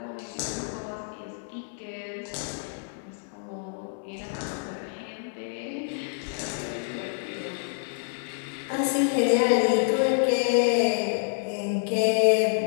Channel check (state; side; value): silent; right; 60 dB below the other